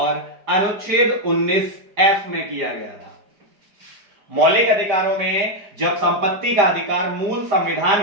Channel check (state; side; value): late; left; 4.9 ms